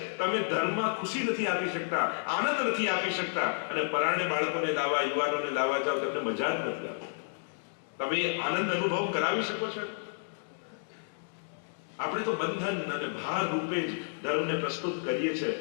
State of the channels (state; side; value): silent; right; digital silence